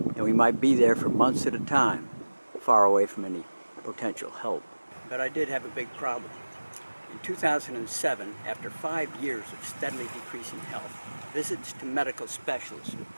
and we might be there for months at a time, far away from any potential help. But I did have a big problem. In 2007, after 5 years of steadily decreasing health, visits to medical specialists who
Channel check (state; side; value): inverted; both; correlation -1.00